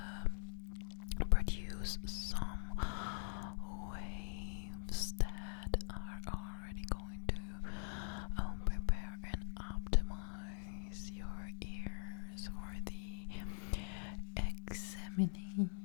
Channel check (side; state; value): right; silent; digital silence